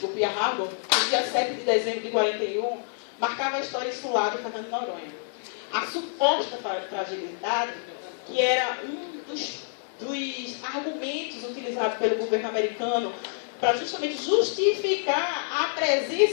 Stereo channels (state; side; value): silent; right; 60 dB below the other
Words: Pearl Harbor, no dia 7 de dezembro de 41, marcava a história insular de Fernando de Noronha. A suposta fragilidade, que era um dos argumentos utilizados pelo governo americano para justamente justificar a